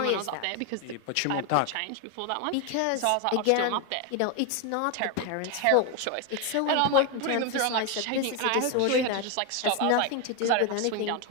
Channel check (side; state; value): both; different; correlation 0.01